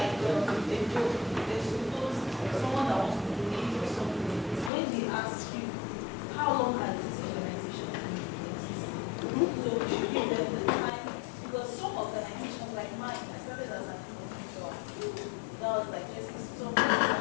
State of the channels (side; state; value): right; drops out; at 4.7 s